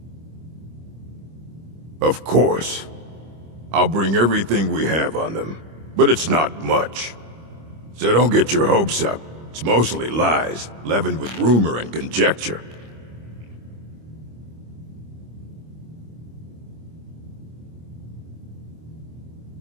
Of course. I'll bring everything we have on them. But it's not much. So don't get your hopes up. It's mostly lies, leavened with rumor and conjecture.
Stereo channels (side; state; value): left; late; 25 ms